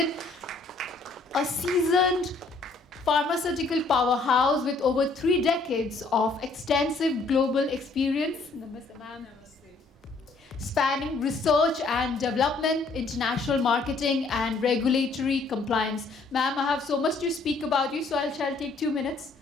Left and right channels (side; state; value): right; quieter; 3.7 dB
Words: a seasoned pharmaceutical powerhouse with over 3 decades of extensive global experience. Namaste, ma'am. Spanning research and development, international marketing, and regulatory compliance. Ma'am, I have so much to speak about you, so I shall take 2 minutes